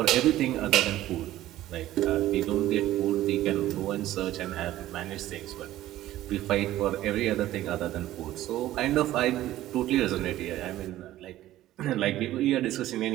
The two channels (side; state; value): left; quieter; 14.5 dB